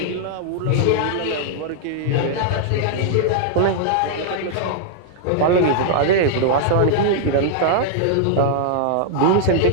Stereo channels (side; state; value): both; different; correlation -0.01